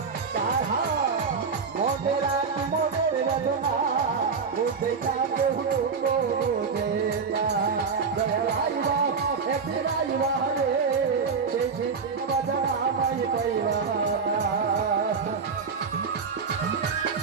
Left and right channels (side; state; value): left; quieter; 5.4 dB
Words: তাহা মনের মনের বেদনা বুঝে যাবে বুঝে না আইবা একদিন আইবা রে সেই বাজার আমায় পাইবা